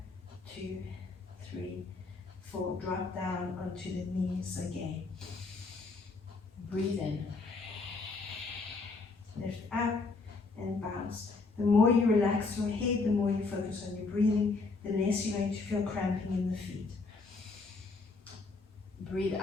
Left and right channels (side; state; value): right; quieter; 3.9 dB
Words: 2, 3, 4. Drop down onto the knees again. Breathe in. Lift up and bounce. The more you relax your head, the more you focus on your breathing, the less you're going to feel cramping in the feet. Breathe